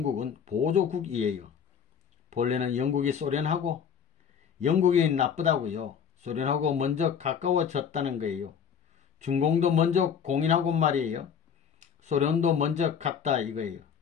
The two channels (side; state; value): right; quieter; 7.5 dB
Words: 보조국이에요. 본래는 영국이 소련하고 영국이 나쁘다고요. 소련하고 먼저 가까워졌다는 거예요. 중공도 먼저 공인하고 말이에요. 소련도 먼저 갔다 이거예요.